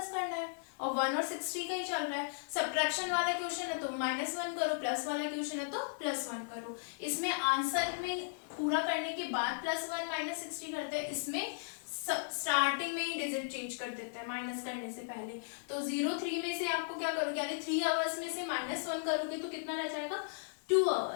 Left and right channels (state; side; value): silent; right; 54 dB below the other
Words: करना है। और 1 और 60 का ही चल रहा है। सब्ट्रैक्शन वाला क्वेश्चन है तो -1 करो, प्लस वाला क्वेश्चन है तो +1 करो। इसमें आंसर में पूरा करने के बाद +1 -60 करते हैं, इसमें स्टार्टिंग में ही डिजिट चेंज कर देते हैं माइनस करने से पहले। तो 03 में से आपको क्या करोगे, यानी 3 आवर्स में से -1 करोगे तो कितना रह जाएगा 2